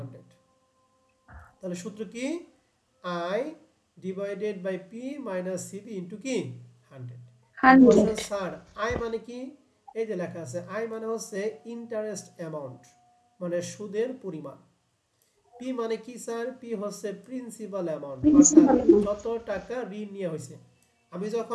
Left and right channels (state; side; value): identical; both; correlation 1.00